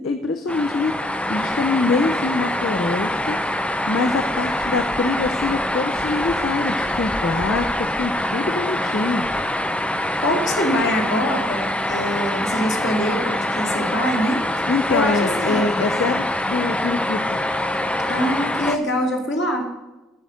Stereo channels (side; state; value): both; normal; correlation 0.64